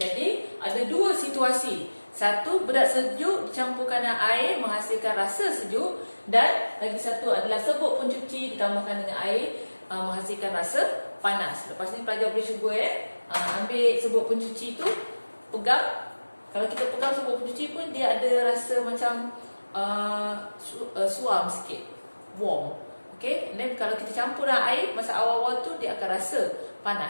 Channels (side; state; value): both; inverted; correlation -1.00